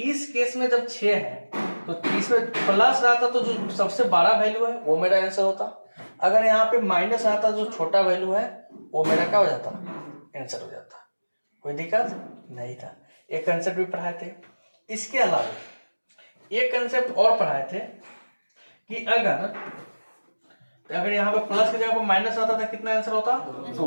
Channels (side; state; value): both; inverted; correlation -1.00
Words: केस में जब 6 है तो इसमें प्लस रहता तो जो सबसे बड़ा वैल्यू है वो मेरा आंसर होता। अगर यहाँ पे माइनस आता जो छोटा वैल्यू है वो मेरा क्या हो जाता, आंसर हो जाता। कोई दिक्कत नहीं था। एक कंसेप्ट भी पढ़ाए थे। इसके अलावा एक कंसेप्ट और पढ़ाए थे कि अगर यहाँ पे प्लस की जगह पर माइनस आता था कितना आंसर होता, 2